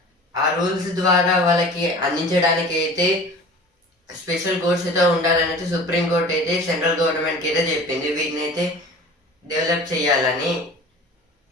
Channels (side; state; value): both; normal; correlation 0.41